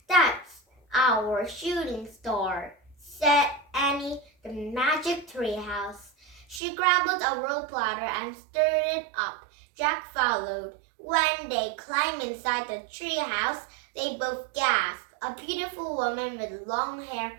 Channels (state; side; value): drops out; left; at 6.6 s